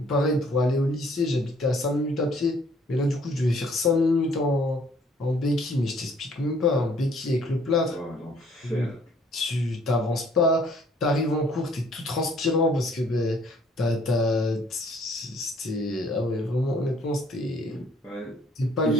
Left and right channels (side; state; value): both; normal; correlation 0.61